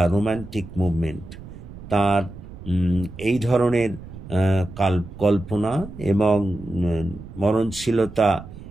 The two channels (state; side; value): noise; right; rumble, 14 dB below the sound